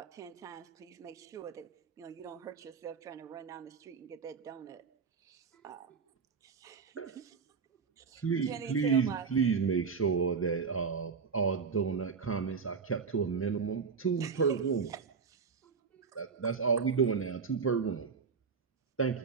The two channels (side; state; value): left; quieter; 5.6 dB